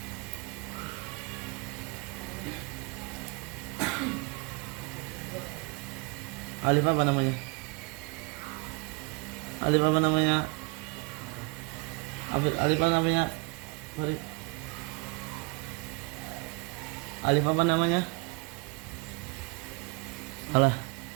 Alif apa namanya? Alif apa namanya? Alif apa namanya? Sorry. Alif apa namanya? Alah.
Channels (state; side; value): quieter; left; 29.6 dB